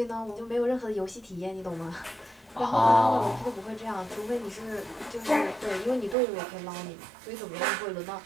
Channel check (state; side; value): drops out; left; at 6.2 s